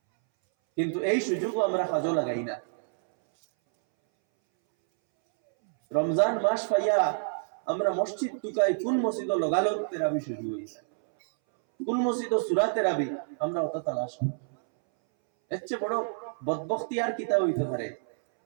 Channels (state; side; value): silent; left; 59 dB below the other